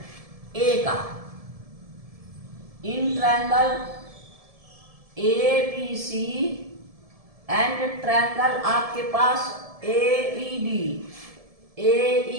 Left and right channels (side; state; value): left; late; 1.7 ms